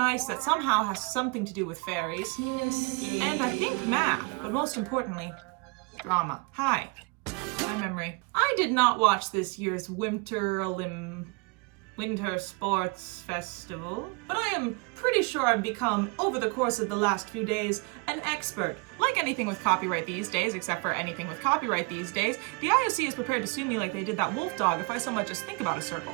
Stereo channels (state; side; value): quieter; left; 29.7 dB